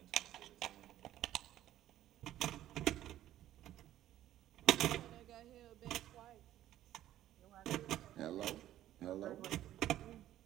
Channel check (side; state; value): left; quieter; 13.0 dB